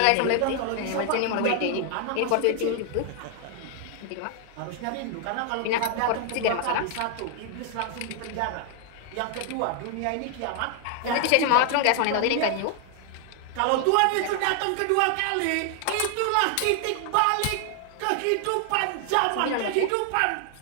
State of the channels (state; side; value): different; both; correlation 0.00